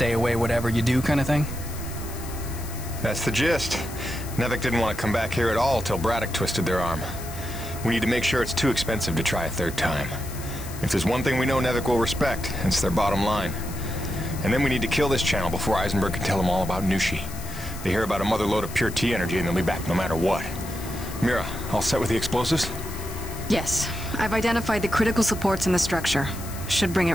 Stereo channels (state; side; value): noise; left; hiss, 14 dB below the sound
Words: away, whatever you do kind of thing? That's the gist. Nevik didn't want to come back here at all till Braddock twisted their arm. We need to make sure it's too expensive to try a third time. If there's one thing we know Nevik will respect, it's their bottom line. And then we need to kill this channel before Eisenberg can tell them all about Nushi. They hear about a mother load of pure T energy and they'll be back no matter what. Mira, all set with the explosives? Yes. I've identified the critical supports in the structure. Should bring it